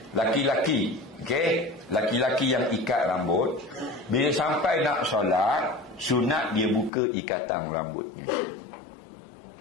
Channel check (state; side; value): drops out; right; at 6.9 s